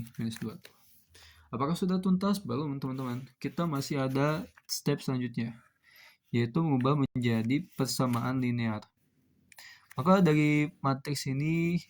minus 2. Apakah sudah tuntas? Belum teman-teman. Kita masih ada step selanjutnya, yaitu mengubah menjadi persamaan linear. Maka dari matriks ini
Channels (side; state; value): both; identical; correlation 1.00